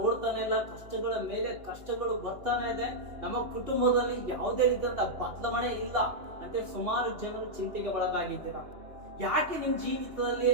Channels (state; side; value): late; left; 2.9 ms